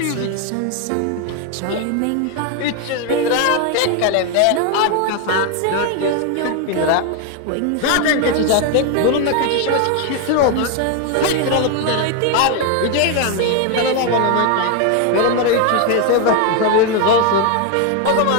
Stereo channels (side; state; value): both; different; correlation 0.01